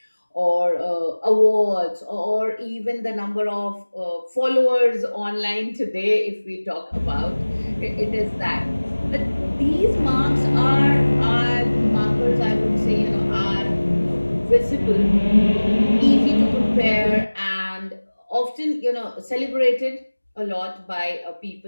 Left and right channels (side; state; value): both; inverted; correlation -1.00